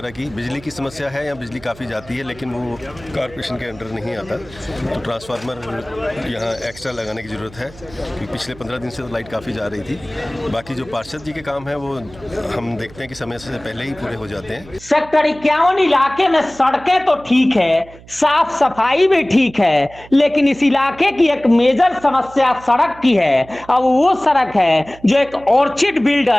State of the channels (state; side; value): noise; right; hum, 21 dB below the sound